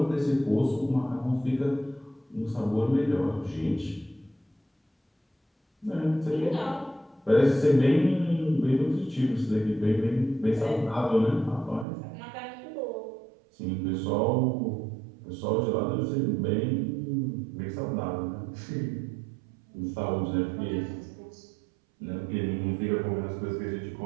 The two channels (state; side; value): drops out; left; at 11.9 s